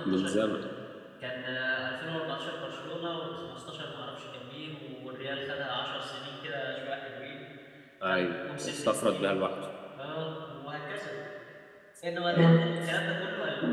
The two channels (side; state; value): both; identical; correlation 1.00